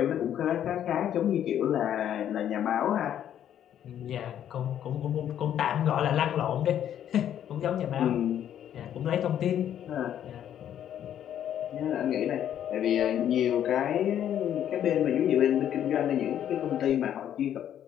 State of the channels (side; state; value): right; quieter; 10.3 dB